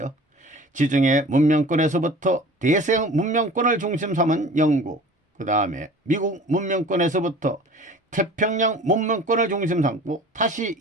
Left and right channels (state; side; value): normal; both; correlation 0.43